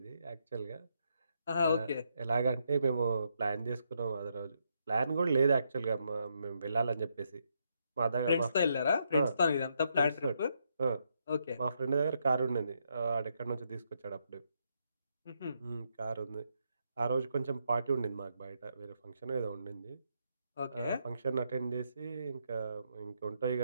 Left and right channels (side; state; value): both; inverted; correlation -0.78